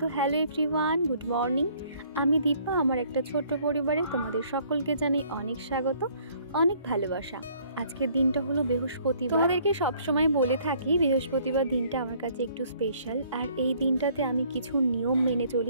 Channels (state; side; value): inverted; both; correlation -0.61